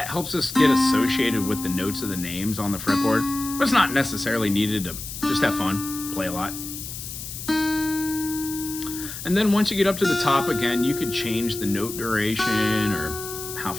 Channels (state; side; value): noise; left; hiss, 9 dB below the sound